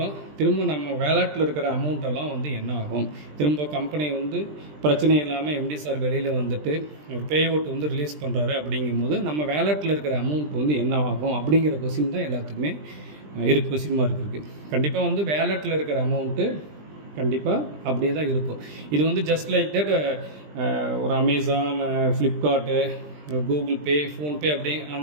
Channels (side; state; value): left; late; 20 ms